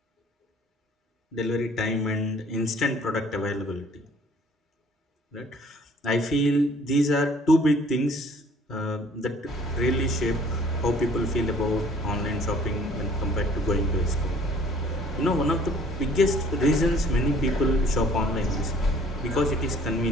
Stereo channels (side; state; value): both; normal; correlation 0.56